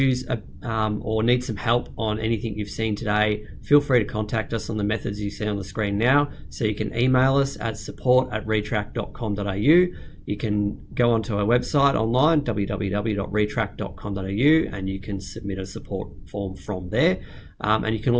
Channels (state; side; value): identical; both; correlation 1.00